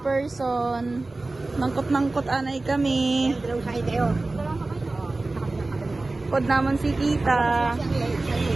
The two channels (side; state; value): left; quieter; 3.2 dB